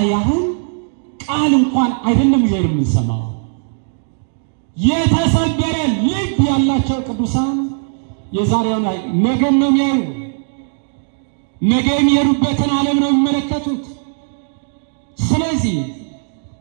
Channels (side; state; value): left; silent; 68 dB below the other